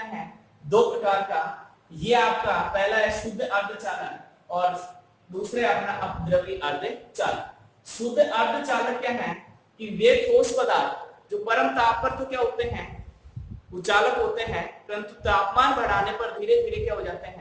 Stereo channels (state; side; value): identical; both; correlation 1.00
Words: है, 2 प्रकार का। ये आपका पहला है शुद्ध अर्धचालक और दूसरे अपना अपद्रवी अर्धचालक। शुद्ध अर्धचालक क्या है कि वे ठोस पदार्थ जो परम ताप पर तो क्या होते हैं, वो चालक होते हैं, परंतु तापमान बढ़ाने पर धीरे धीरे क्या हो जाते